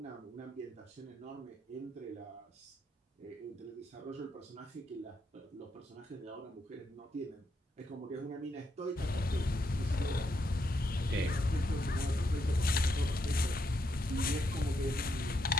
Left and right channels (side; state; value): both; normal; correlation 0.79